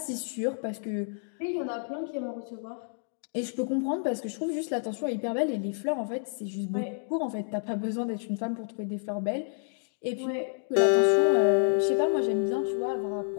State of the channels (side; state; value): right; silent; digital silence